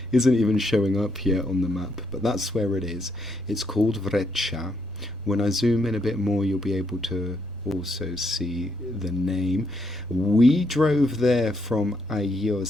isn't even showing up here on the map, but that's where it is. It's called Vretsia. When I zoom in a bit more, you'll be able to also see the name. We drove there from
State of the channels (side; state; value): right; noise; rumble, 23 dB below the sound